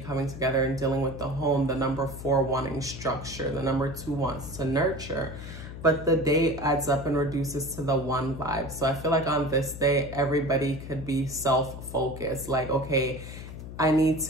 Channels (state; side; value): noise; left; hum, 11 dB below the sound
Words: together and dealing with the home, the number 4 wanting structure, the number 2 wants to nurture. but the day adds up and reduces to the one vibe. So I feel like on this day, everybody could be self-focused. Like, okay, I need